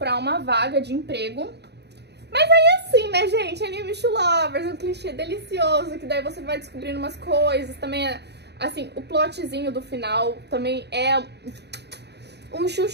uma vaga de emprego. Mas aí assim, né, gente, Enemies to Lovers, um clichê delicioso, que daí você vai descobrindo umas coisas, também assim, o plotzinho do final também é um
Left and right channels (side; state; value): left; late; 0.49 ms